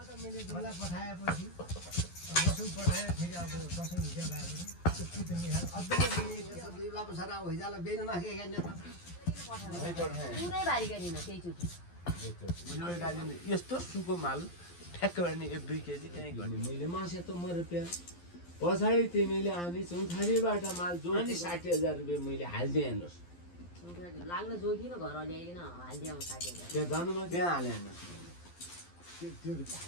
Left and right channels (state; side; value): late; right; 12 ms